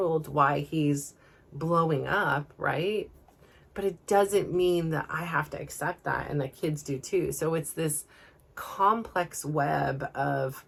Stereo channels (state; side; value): identical; both; correlation 1.00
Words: why he's blowing up, right? But it doesn't mean that I have to accept that, and the kids do too. So it's this complex web of